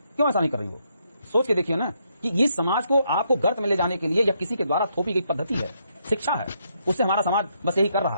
क्यों ऐसा नहीं कर रही वो? सोच के देखिए ना कि ये समाज को आपको गर्त में ले जाने के लिए या किसी के द्वारा थोपी गई पद्धति है, शिक्षा है, उससे हमारा समाज बस यही कर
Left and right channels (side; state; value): both; inverted; correlation -0.76